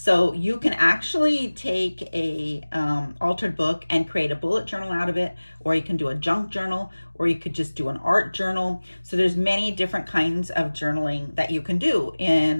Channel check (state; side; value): inverted; both; correlation -1.00